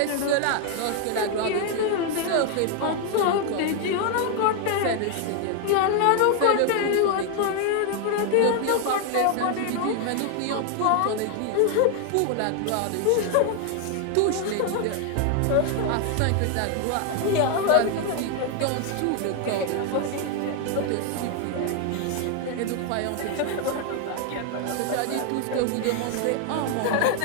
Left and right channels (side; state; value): both; different; correlation 0.00